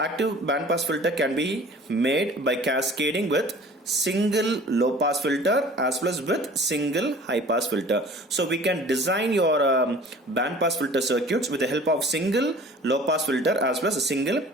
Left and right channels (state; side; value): normal; both; correlation 0.46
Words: bandpass filter can be made by cascading with single low pass filter as well as with single high pass filter. So we can design your bandpass filter circuits with the help of single low pass filter as well as a single